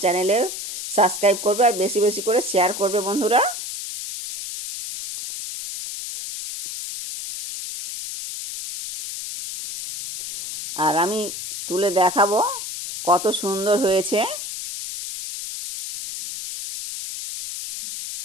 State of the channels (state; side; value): noise; left; hiss, 8 dB below the sound